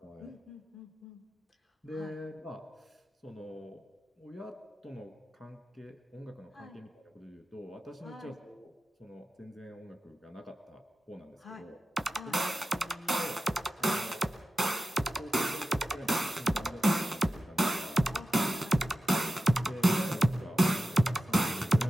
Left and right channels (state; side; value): normal; both; correlation 0.93